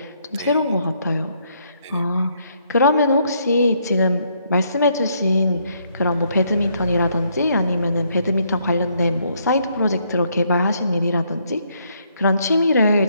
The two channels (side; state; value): both; inverted; correlation -0.72